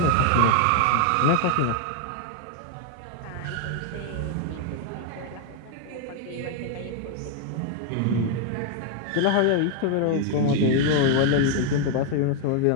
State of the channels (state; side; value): different; both; correlation 0.00